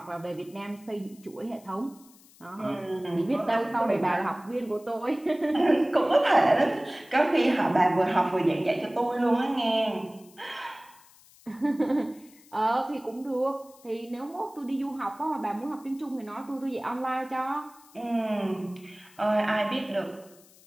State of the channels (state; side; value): noise; left; hiss, 26 dB below the sound